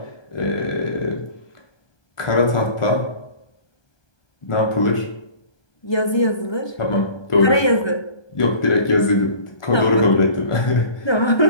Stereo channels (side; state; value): right; late; 1.2 ms